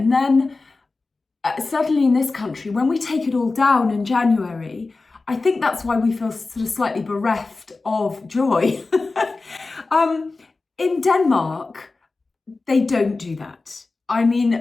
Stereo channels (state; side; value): quieter; right; 3.7 dB